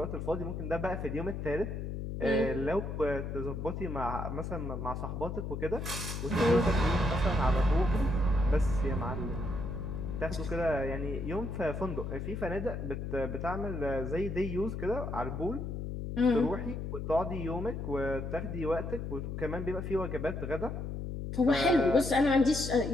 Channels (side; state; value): left; noise; hum, 5 dB below the sound